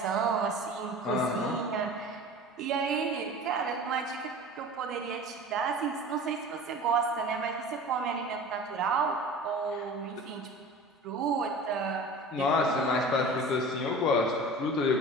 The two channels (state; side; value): normal; both; correlation 0.38